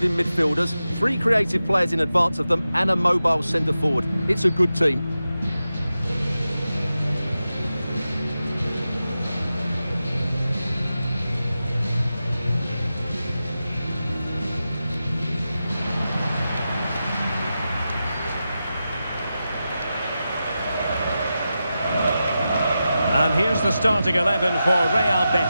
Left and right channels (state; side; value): inverted; both; correlation -0.91